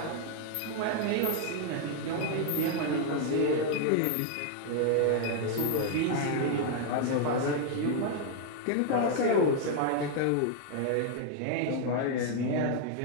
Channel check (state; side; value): different; both; correlation 0.00